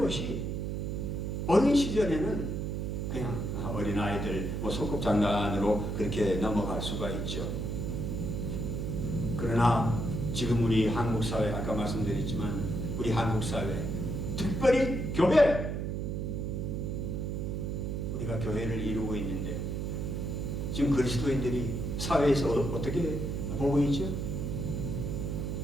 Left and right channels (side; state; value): right; noise; hum, 2 dB below the sound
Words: 어린 시절에는 그냥 어린아이들 소꿉장난으로 그렇게 넘어갈 수가 있죠. 그러나 지금 우리 한국 사회, 아까 말씀드렸지만 우리 한국 사회, 특별히 교회, 우리가 교회를 이루고 있는데 지금 그리스도인들이 사회에서 어떻게 보고 있죠?